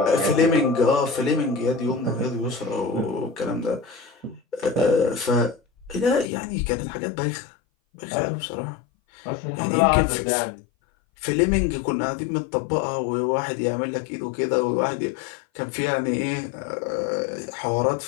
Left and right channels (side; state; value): right; drops out; at 6.3 s